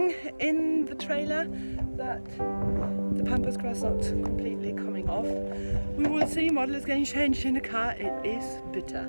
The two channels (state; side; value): inverted; both; correlation -1.00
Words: in the trailer, but the pampas grass not completely coming off. We will see. Model is getting changed in the car. It is bitter.